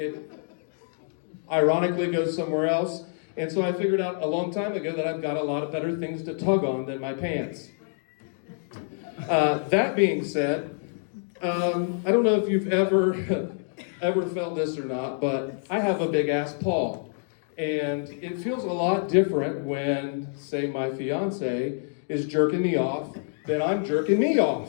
ironically goes somewhere else. And so I figured out a long time ago that I've got a lot of better things to tug on than my pants. That being said, I don't know if you've ever felt this or not, but I have a big ass paw. And it feels a lot different when, say, my fiance is jerking me off than I'm jerking me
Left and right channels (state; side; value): silent; right; digital silence